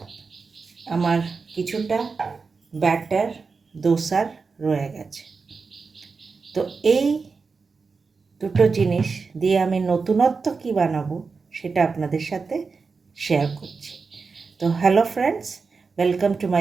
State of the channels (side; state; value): left; quieter; 4.7 dB